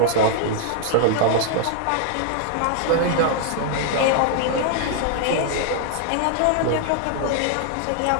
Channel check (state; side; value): different; both; correlation 0.00